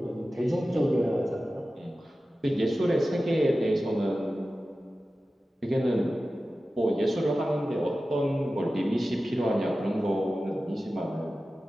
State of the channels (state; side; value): normal; both; correlation 0.95